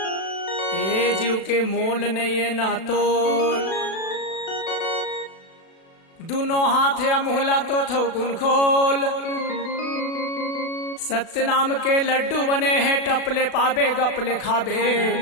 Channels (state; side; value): late; right; 36 ms